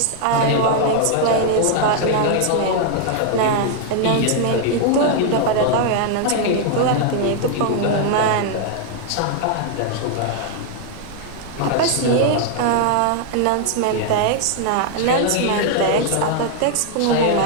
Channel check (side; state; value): both; different; correlation 0.00